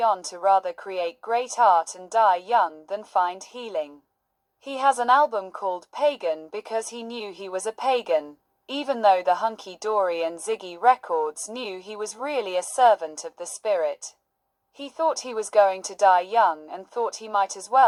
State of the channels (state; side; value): identical; both; correlation 1.00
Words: on to rather create great art and die young than find healing. He has an album called Pagan because he knew he was a pagan, even though the hunky-dory and Ziggy Records knew he was really a servant of the spirit. He thought he was going to die young and thought he might as